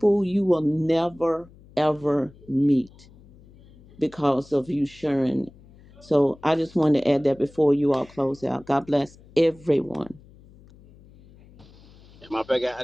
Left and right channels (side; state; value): left; noise; hum, 25 dB below the sound